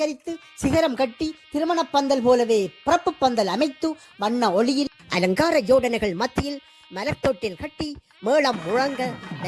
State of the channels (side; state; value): both; identical; correlation 1.00